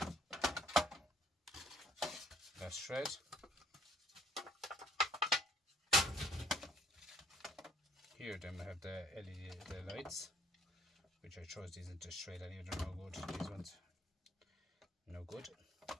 That's shred. Here then we have the LED, the lights. which I chose these into shred anyway. They're no good. These ones, no good.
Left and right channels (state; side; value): normal; both; correlation 0.60